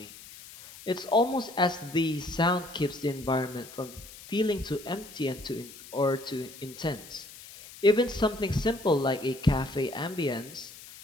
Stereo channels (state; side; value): noise; left; hiss, 17 dB below the sound